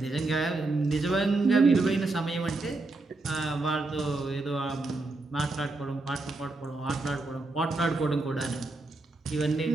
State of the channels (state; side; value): quieter; left; 3.2 dB